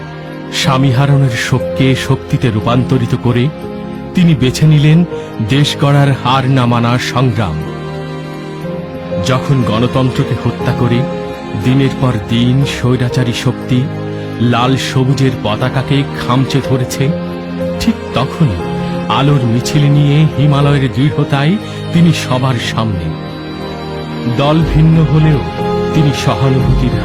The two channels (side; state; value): both; identical; correlation 1.00